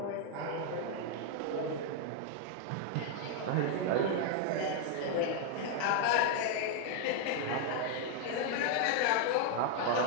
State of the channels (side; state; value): both; different; correlation 0.00